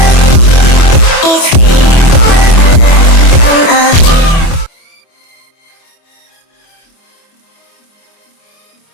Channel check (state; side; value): late; right; 24 ms